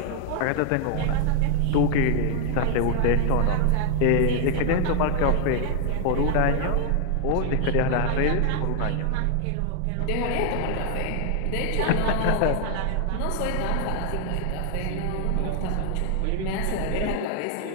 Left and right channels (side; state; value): both; different; correlation 0.00